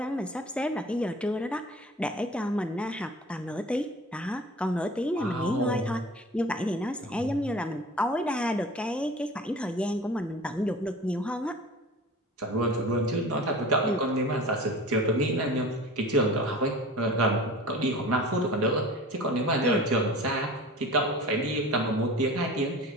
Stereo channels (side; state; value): both; normal; correlation 0.40